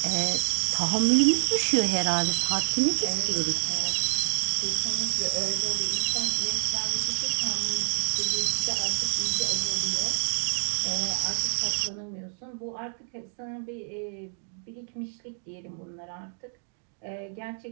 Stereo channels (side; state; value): left; silent; digital silence